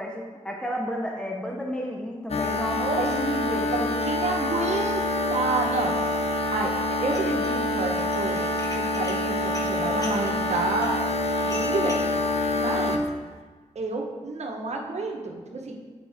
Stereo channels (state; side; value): normal; both; correlation 0.39